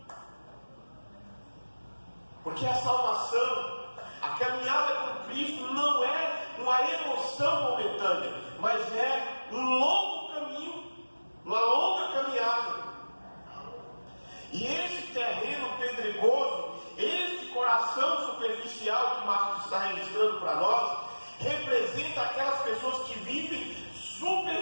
Porque a salvação, a caminhada com Cristo não é uma emoção momentânea, mas é um longo caminho, uma longa caminhada. E esse terreno pedregoso, este coração superficial que Marcos está registrando para nós, representa aquelas pessoas que vivem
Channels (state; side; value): inverted; both; correlation -1.00